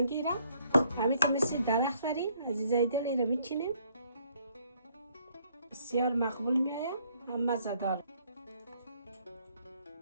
را همین که مثل درخت بریم عزیزای دل این را میچینیم بسیار مقبول میآید هم مزه دار.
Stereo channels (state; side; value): inverted; both; correlation -0.66